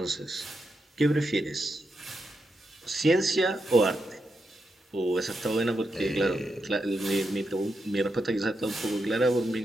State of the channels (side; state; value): both; normal; correlation 0.85